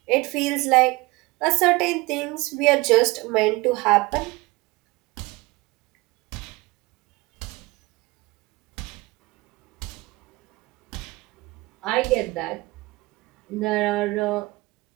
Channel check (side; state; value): left; quieter; 22.9 dB